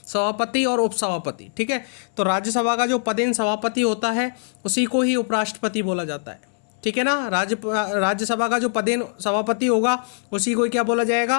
सभापति और उपसभापति, ठीक है। तो राज्यसभा का जो पदेन सभापति होता है उसी को ही उपराष्ट्रपति बोला जाता है, ठीक है ना। राज्यसभा का जो पदेन सभापति होगा उसी को क्या बोला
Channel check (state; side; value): silent; right; 64 dB below the other